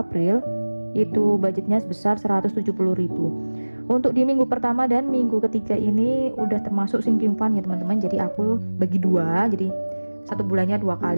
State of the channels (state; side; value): inverted; both; correlation -1.00